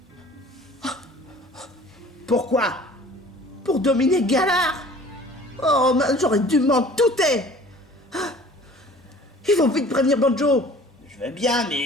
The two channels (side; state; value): both; normal; correlation 0.48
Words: Pourquoi? Pour dominer Galar. Oh, j'aurais dû m'en douter. Il faut vite prévenir Banjo. Je vais bien,